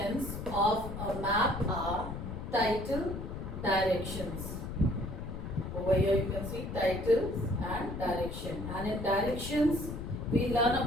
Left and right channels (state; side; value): noise; left; rumble, 7 dB below the sound